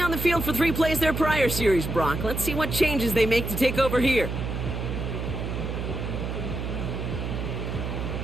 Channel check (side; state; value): right; noise; hum, 4 dB below the sound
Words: on the field for 3 plays their prior series, Brock. Let's see what changes they make to take over here.